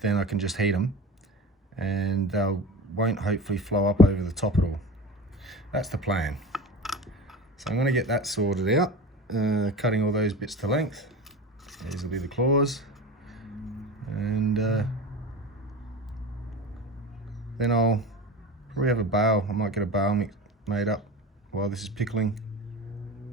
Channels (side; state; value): both; normal; correlation 0.31